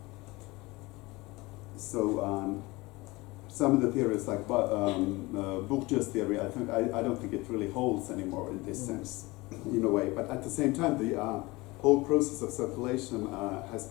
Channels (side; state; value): right; quieter; 22.4 dB